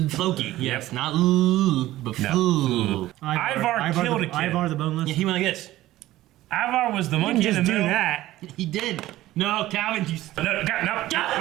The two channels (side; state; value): left; quieter; 15.6 dB